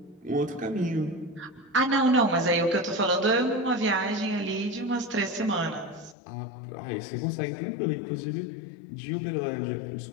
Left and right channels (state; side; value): drops out; right; at 6.2 s